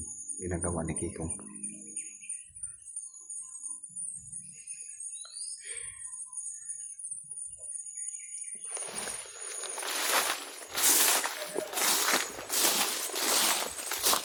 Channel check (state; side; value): identical; both; correlation 1.00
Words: ginagawa ni Kikong.